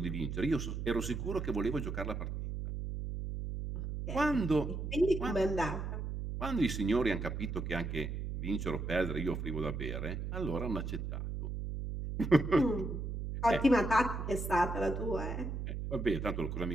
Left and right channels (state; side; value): noise; right; hum, 4 dB below the sound